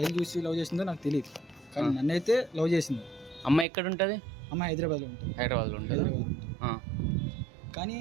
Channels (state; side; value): drops out; left; at 3.7 s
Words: చూసి లవ్ చేసిందో నాకు తెలియదు. కానీ నన్నైతే లవ్ చేసింది. అమ్మాయి ఎక్కడ ఉంటుంది? అమ్మాయి హైదరాబాద్లో ఉంటుంది. హైదరాబాద్లో ఉంటుంది. కానీ